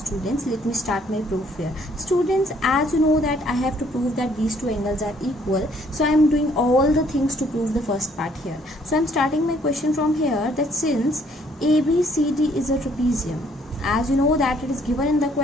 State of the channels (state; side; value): normal; both; correlation 0.64